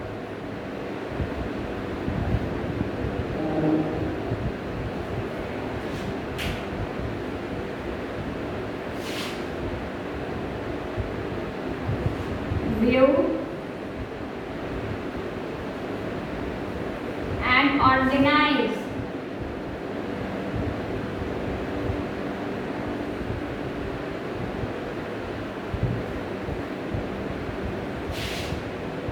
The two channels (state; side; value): identical; both; correlation 1.00